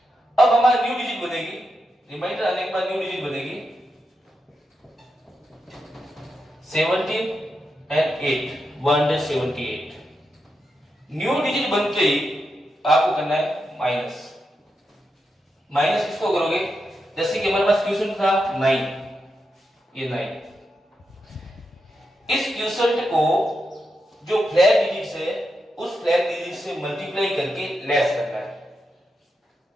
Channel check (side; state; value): both; normal; correlation 0.86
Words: अब हमारी न्यू डिजिट बनेगी रिमाइंडर आने के बाद न्यू डिजिट बनेगी 17 एंड 8 178। न्यू डिजिट बनते ही आपको करना है माइनस। माइनस किसको करोगे, जैसे कि हमारे पास क्वेश्चन था 9, ये 9, इस क्वेश्चन को जो फ्लैग डिजिट है उस फ्लैग डिजिट से मल्टीप्लाई करके लेस करना है।